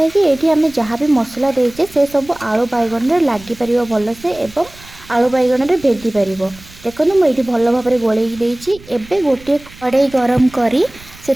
कि एठी हमें जहाँ भी मसला देइछे से सब आलू बैगण रे लागि परिबो भल से एवं आलू बैगण रे भेदी परिबो। देखो मुझे भल भाव गोलैक देइछि। एबे गोटे कड़ाई गरम करी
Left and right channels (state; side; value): noise; right; rumble, 21 dB below the sound